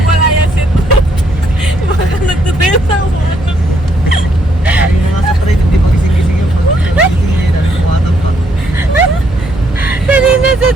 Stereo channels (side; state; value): both; normal; correlation 0.71